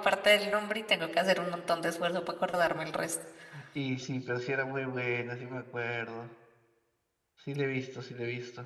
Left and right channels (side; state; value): both; identical; correlation 1.00